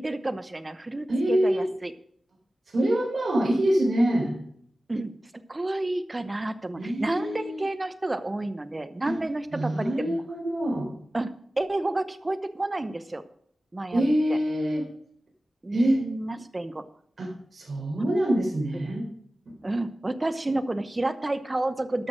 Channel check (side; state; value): both; normal; correlation 0.96